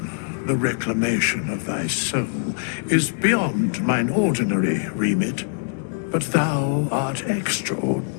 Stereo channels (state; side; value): silent; right; digital silence